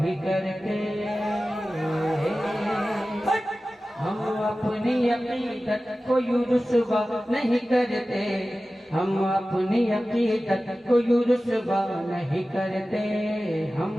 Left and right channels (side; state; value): both; normal; correlation 0.95